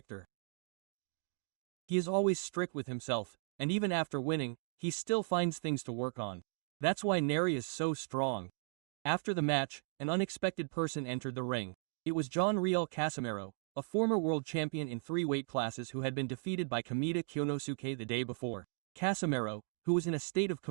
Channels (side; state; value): left; silent; 53 dB below the other